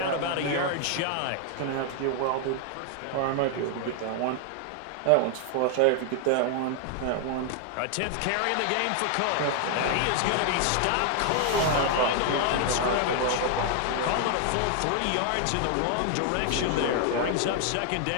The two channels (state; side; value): different; both; correlation 0.00